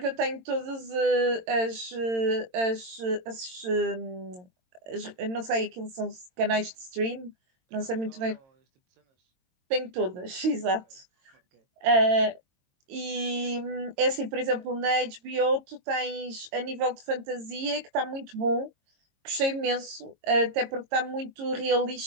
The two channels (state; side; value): late; left; 22 ms